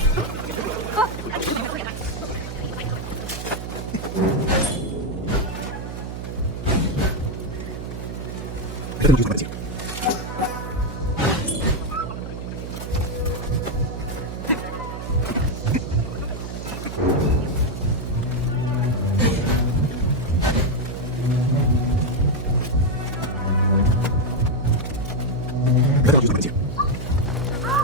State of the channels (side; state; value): right; noise; hum, 7 dB below the sound